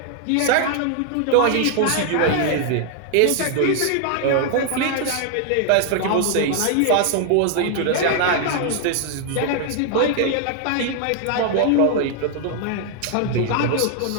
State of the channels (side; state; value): both; different; correlation 0.00